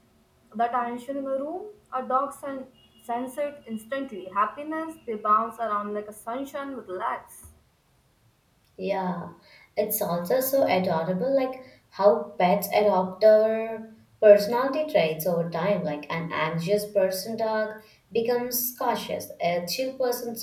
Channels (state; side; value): identical; both; correlation 1.00